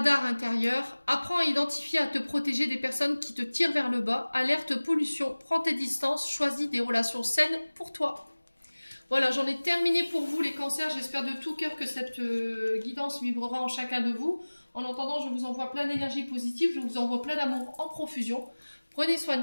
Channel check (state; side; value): inverted; both; correlation -1.00